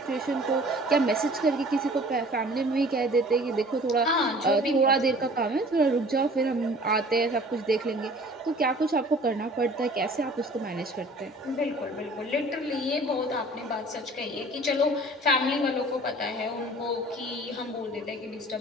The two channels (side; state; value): both; normal; correlation 0.48